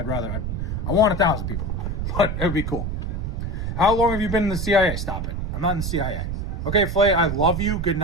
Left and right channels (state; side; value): noise; right; rumble, 2 dB below the sound